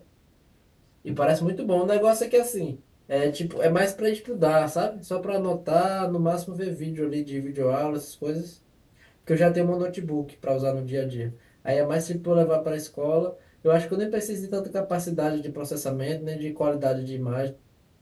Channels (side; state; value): both; identical; correlation 1.00